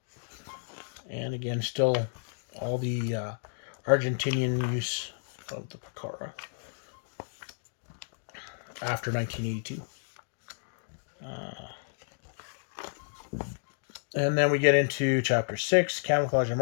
And again, still all the Argentinian use of the Pucara after 1982. And then we get into Chapter 6, Camouflage and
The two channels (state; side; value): silent; right; digital silence